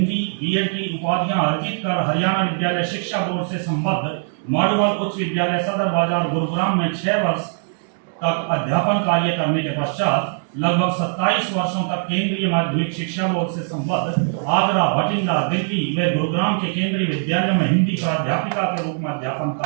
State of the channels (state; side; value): silent; left; 65 dB below the other